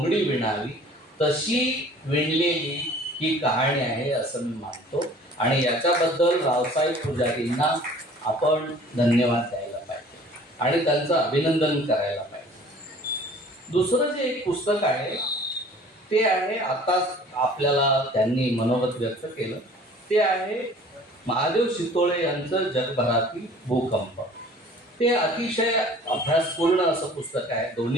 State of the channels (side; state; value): both; normal; correlation 0.49